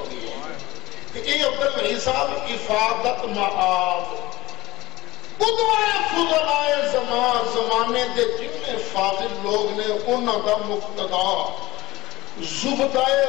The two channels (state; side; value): quieter; right; 18.8 dB